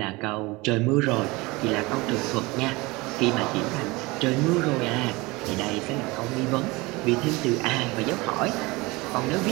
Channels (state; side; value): quieter; left; 23.3 dB